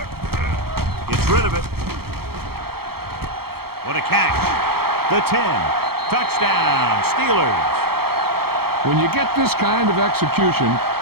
Gets rid of it. What a catch. The 10. Touchdown, Steelers. When you get this kind of execution,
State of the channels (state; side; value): late; left; 0.95 ms